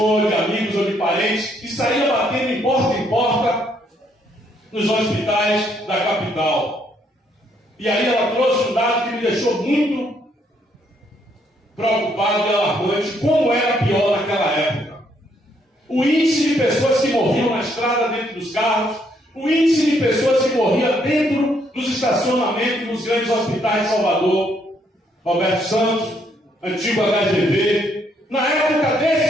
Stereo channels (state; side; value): normal; both; correlation 0.71